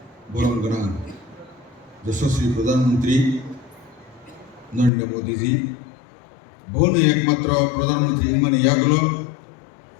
Borong Gerang, Yashaswi Perdana Menteri Narendra Modi ji. Bon ekmatra Perdana Menteri ingman yaglo.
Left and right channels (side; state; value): right; drops out; at 4.9 s